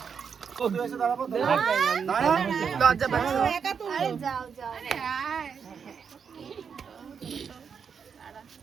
লজ্জা পাচ্ছ? আরে যাও যাও।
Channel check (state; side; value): quieter; left; 6.6 dB